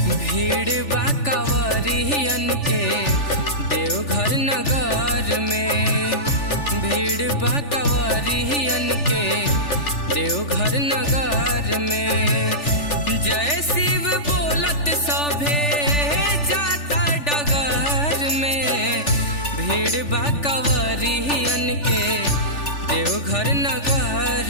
भीड़ बा कंवरियन के देवघर नगर में। भीड़ बा कंवरियन के देवघर नगर में। जय शिव बोलत सभे जाता डगर में। भीड़ बा कंवरियन के देवघर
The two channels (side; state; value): right; late; 3.4 ms